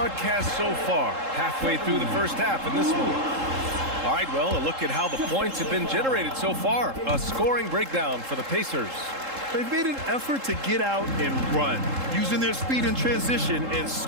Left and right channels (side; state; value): left; late; 3.7 ms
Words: so far. Halfway through the first half in this one. All right, well, a look at how the points have been generated so far. A scoring breakdown for the Pacers. They've made an effort to get out and run, using their speed in transition and